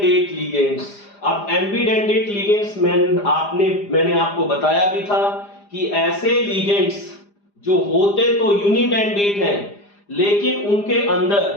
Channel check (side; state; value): right; late; 4.9 ms